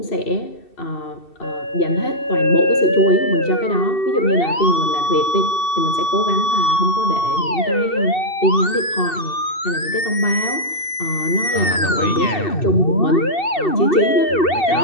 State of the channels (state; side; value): late; right; 2.7 ms